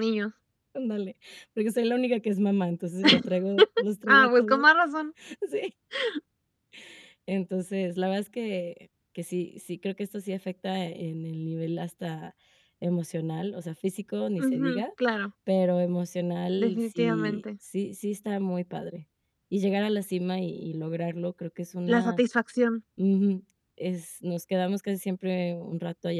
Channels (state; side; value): identical; both; correlation 1.00